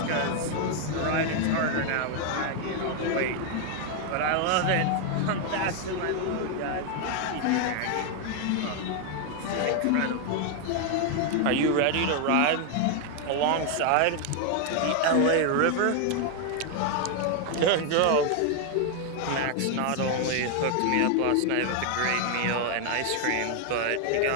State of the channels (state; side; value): different; both; correlation 0.01